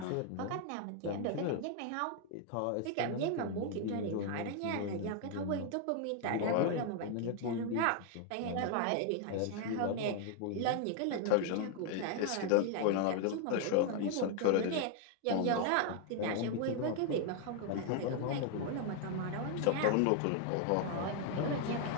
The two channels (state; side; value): different; both; correlation 0.00